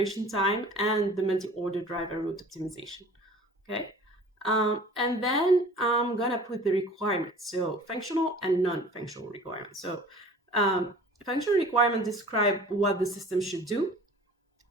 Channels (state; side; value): normal; both; correlation 0.45